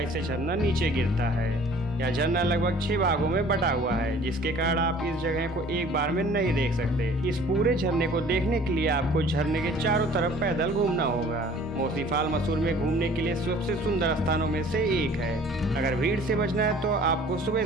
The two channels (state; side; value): normal; both; correlation 0.51